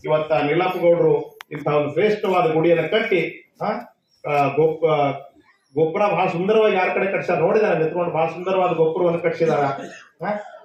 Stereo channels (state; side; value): identical; both; correlation 1.00